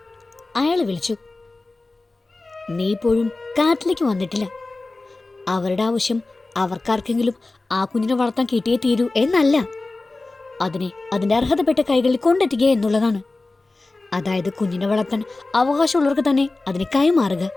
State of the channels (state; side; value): quieter; right; 3.2 dB